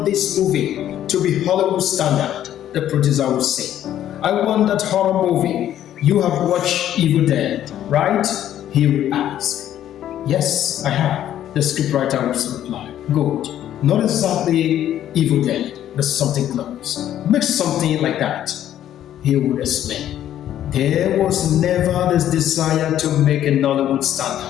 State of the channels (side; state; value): right; quieter; 11.5 dB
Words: this movie to be Hollywood standard, the producer would say. I want that horror movie. You have watched Evil Dead, right? He would ask. Yes, I have, the scriptwriter would reply. Good. Not exactly Evil Dead, but something close. Make something like that, he would explain. There was never this desire to make a Nollywood